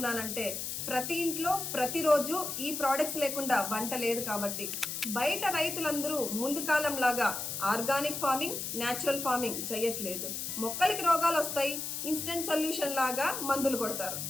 ప్రతి ఇంట్లో ప్రతిరోజు ఈ ప్రోడక్ట్స్ లేకుండా వంట లేదు కాబట్టి. బయట రైతులందరూ ముందు కాలం లాగా ఆర్గానిక్ ఫార్మింగ్, న్యాచురల్ ఫార్మింగ్ చేయట్లేదు. మొక్కలకి రోగాలు వస్తాయి, ఇన్స్టెంట్ సొల్యూషన్ లాగా మందులు కొడతారు.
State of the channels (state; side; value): noise; left; hiss, 4 dB below the sound